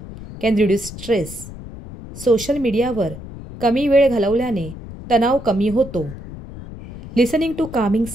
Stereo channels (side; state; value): left; noise; rumble, 13 dB below the sound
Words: can reduce stress. Social मीडियावर कमी वेळ घालवल्याने तणाव कमी होतो. Listening to calming